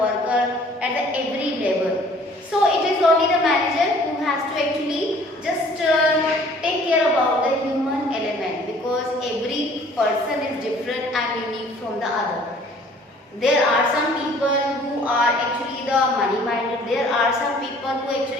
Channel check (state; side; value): normal; both; correlation 0.54